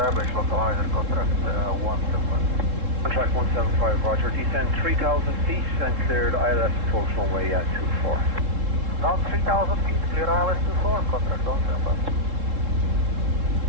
localizer, contract 175. Contract 175, roger. Descend 3,000 feet and cleared ILS approach runway 24. Down 3,000 feet, clear ILS 24, contract 175.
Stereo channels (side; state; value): left; late; 3.7 ms